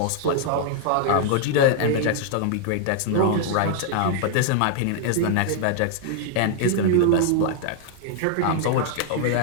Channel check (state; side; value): different; both; correlation 0.00